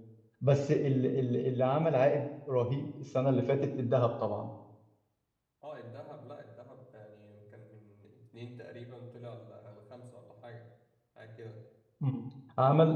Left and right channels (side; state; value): both; identical; correlation 1.00